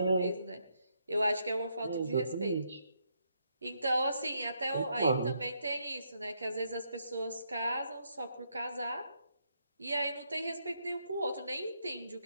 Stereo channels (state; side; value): inverted; both; correlation -0.76